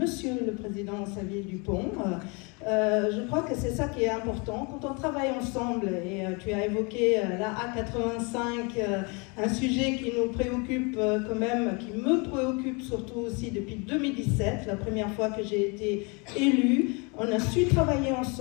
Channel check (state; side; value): quieter; right; 31.0 dB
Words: le Président Xavier Dupont. Je crois que c'est ça qui est important. Quand on travaille ensemble, et tu as évoqué la A85, un sujet qui nous préoccupe quand même, qui me préoccupe surtout aussi depuis 2017, la première fois que j'ai été élue. On a su travailler